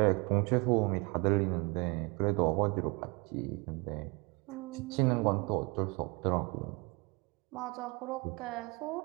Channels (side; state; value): left; quieter; 28.8 dB